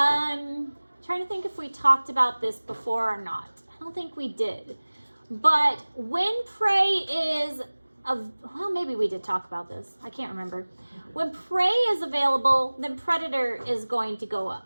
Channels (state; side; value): inverted; both; correlation -1.00